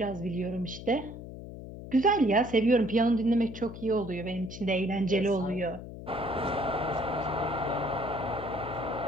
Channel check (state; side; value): noise; left; hum, 12 dB below the sound